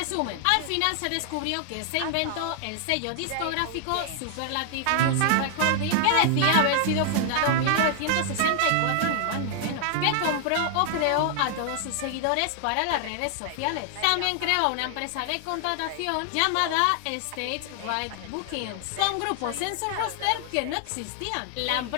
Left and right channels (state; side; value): different; both; correlation 0.00